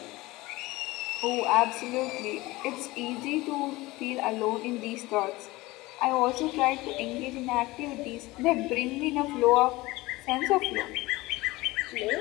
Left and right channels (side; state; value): right; quieter; 20.3 dB